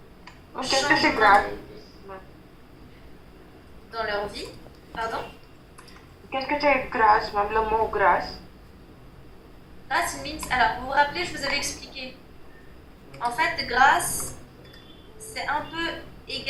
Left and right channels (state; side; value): identical; both; correlation 1.00